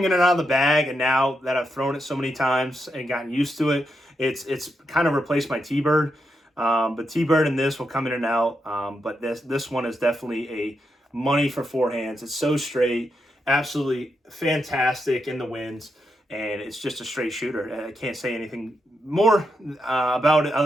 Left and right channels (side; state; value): both; normal; correlation 0.84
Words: in and out of the bag, and now that I've thrown it so many times and gotten used to it, it's kind of replaced my T-Bird. But T-Bird and this will come in and out. But this one is definitely a money for forehands. It's so straight, absolutely fantastic in the winds, and it's just a straight shooter. I can't say anything more about it